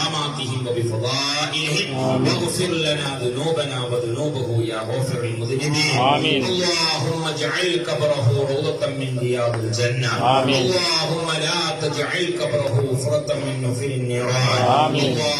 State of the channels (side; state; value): both; identical; correlation 1.00